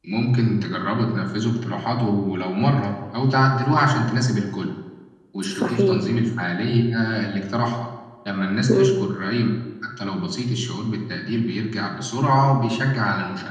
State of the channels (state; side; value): identical; both; correlation 1.00